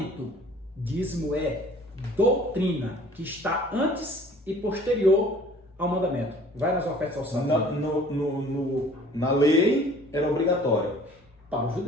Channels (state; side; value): normal; both; correlation 0.51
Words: Dízimo é doutrina, que está antes e posterior ao mandamento. Vai nas ofertas alçadas. Na lei era obrigatório. Para os